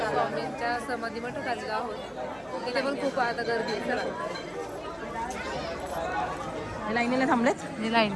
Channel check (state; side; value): identical; both; correlation 1.00